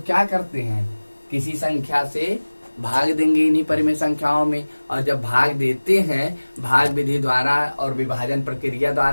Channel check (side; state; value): both; inverted; correlation -1.00